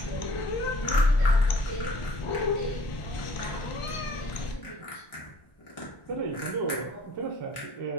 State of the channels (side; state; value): right; late; 1.4 ms